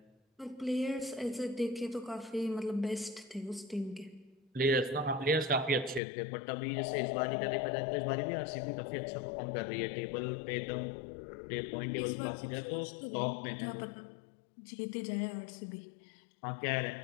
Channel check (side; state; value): right; drops out; at 6.0 s